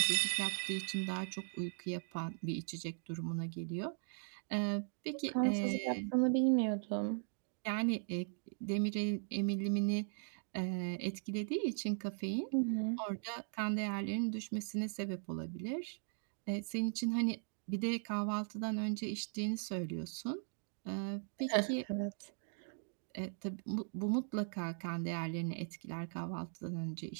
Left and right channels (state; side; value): silent; left; 52 dB below the other